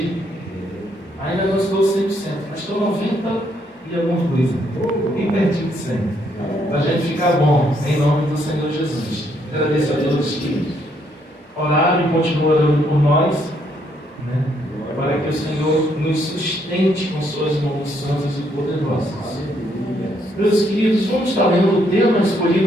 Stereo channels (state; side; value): normal; both; correlation 0.72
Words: Ainda não estou 100%, mas estou 90% e alguma coisa. Bem pertinho de 100%. Para a gente ficar bom, em nome do Senhor Jesus. Agradeço a todos que oraram e continuam orando por nós, né? Para que o Senhor nos sustente com suas mãos santas e poderosas. Meus queridos, vamos estar lendo o tema